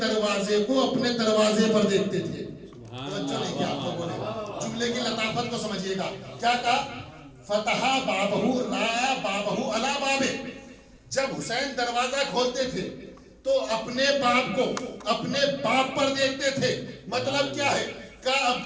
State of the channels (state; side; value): identical; both; correlation 1.00